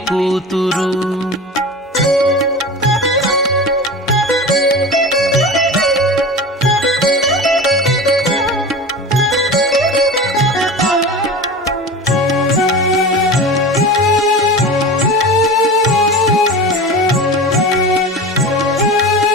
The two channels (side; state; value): both; normal; correlation 0.31